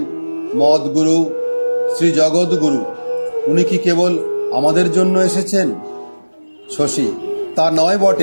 মদগুরু শ্রী জগৎগুরু। উনি কি কেবল আমাদের জন্য এসেছেন? শশী: তা নয়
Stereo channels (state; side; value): inverted; both; correlation -1.00